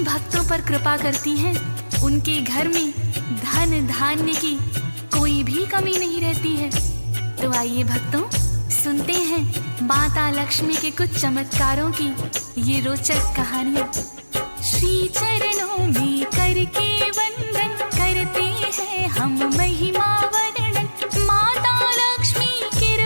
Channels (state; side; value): inverted; both; correlation -1.00